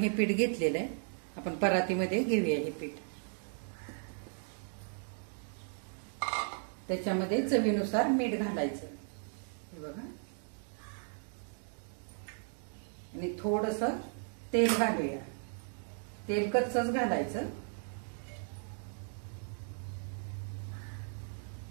पीठ घेतलेलं आहे। आपण परातीमध्ये घेऊया हे पीठ। त्याच्यामध्ये चवीनुसार मीठ घालायचं, हे बघा। आणि थोडंसं तेल घालूया, तेल कच्चंच घालायचं,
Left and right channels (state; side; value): silent; left; 54 dB below the other